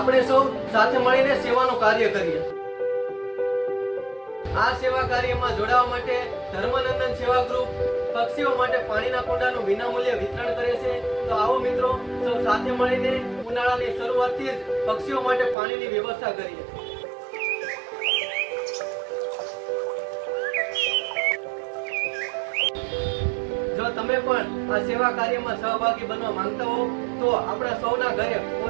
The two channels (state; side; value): drops out; left; at 15.6 s